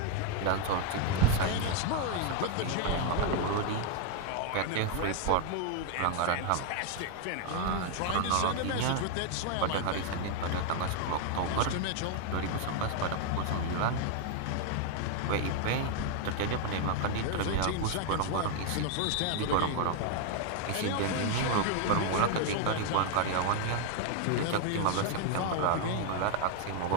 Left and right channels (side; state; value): both; different; correlation 0.00